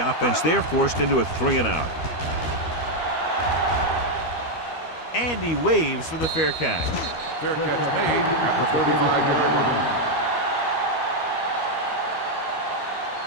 offense. They're forced into a 3-and-out. And he waves for the fair catch. Fair catch made at the 35-yard line.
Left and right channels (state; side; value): late; right; 13 ms